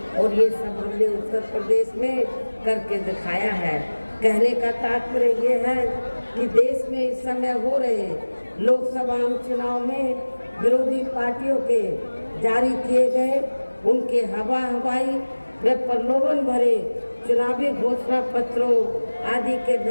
और ये सब हमने उत्तर प्रदेश में करके दिखाया है। कहने का तात्पर्य ये है कि देश में इस समय हो रहे लोकसभा आम चुनाव में विरोधी पार्टियों के जारी किए गए उनके हवाई व प्रलोभन भरे चुनावी घोषणा पत्रों आदि के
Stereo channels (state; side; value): inverted; both; correlation -1.00